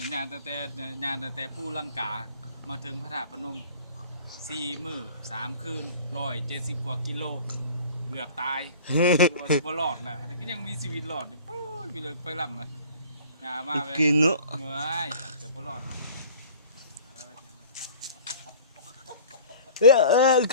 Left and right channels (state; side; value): inverted; both; correlation -0.45